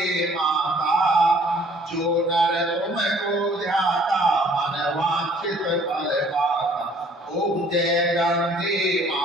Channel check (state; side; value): normal; both; correlation 0.56